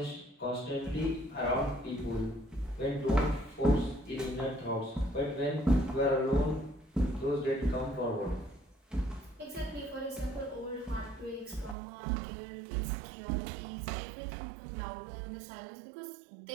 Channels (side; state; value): left; drops out; at 11.8 s